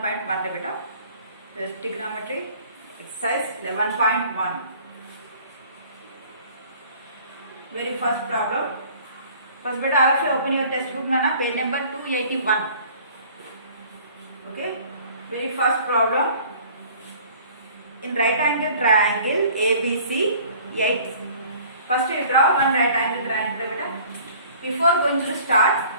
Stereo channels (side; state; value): both; inverted; correlation -0.51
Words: beta. The trigonometry exercise 11.1. Very first problem. First beta, I will open your textbook nana, page number 281. Okay. Very first problem. In right angle triangle ABC 8. First we draw one right angle triangle beta. Before going to start,